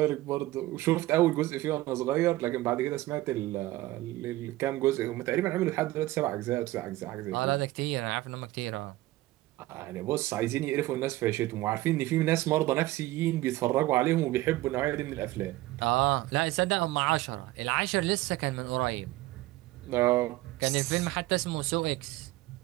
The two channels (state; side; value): quieter; left; 17.6 dB